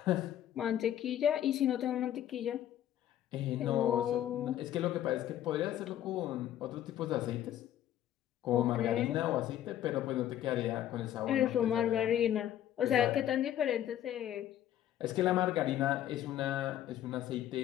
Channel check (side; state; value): right; quieter; 11.7 dB